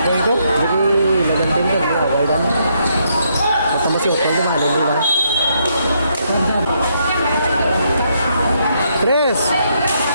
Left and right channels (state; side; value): inverted; both; correlation -0.75